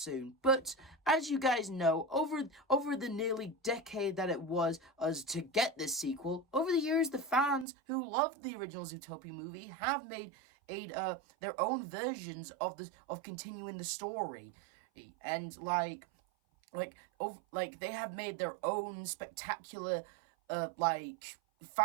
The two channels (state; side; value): drops out; left; at 7.7 s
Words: But, as you guys know, over the nearly decade that it was us to get this sequel, over the years the fans who loved the original Zootopia movie have made their own versions of continuing the story. And, they have made their own spectacular,